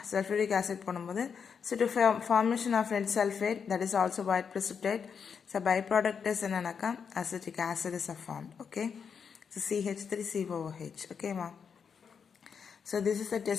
சல்ஃபூரிக் ஆசிட் போடும்போது so to formation of lead sulphate, that is also white precipitate. So by product is என்னன்னாக்கா acetic acid is form. Okay, so CH3COOH. ஓகேவா? So this is the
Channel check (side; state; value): right; quieter; 6.5 dB